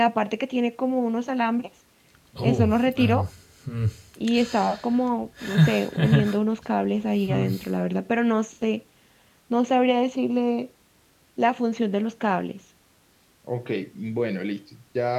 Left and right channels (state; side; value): identical; both; correlation 1.00